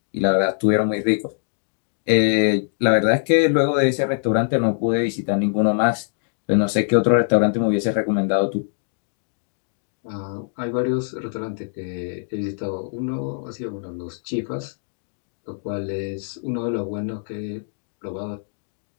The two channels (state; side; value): silent; right; digital silence